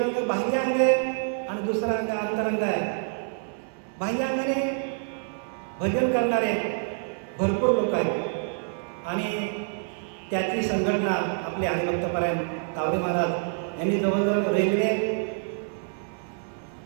बाह्य अंग आहे आणि दुसरा अंग अंतरंग आहे. बाह्य अंगाने भजन करणारे भरपूर लोक आहेत आणि त्याची संघटना आपले हरिभक्तपरायण तावरे महाराज यांनी जवळजवळ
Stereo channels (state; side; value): silent; left; digital silence